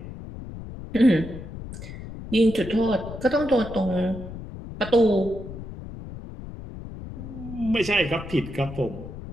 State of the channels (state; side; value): noise; left; rumble, 11 dB below the sound